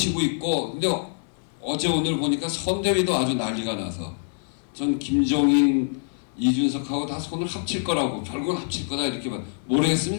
있고, 근데 어제 오늘 보니까 선대위도 아주 난리가 나서 전 김종인, 이준석하고 다 손을 합칠 거라고, 결국은 합칠 거다 이렇게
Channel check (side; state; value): right; silent; digital silence